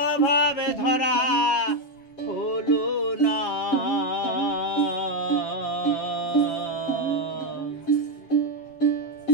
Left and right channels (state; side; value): late; right; 7.3 ms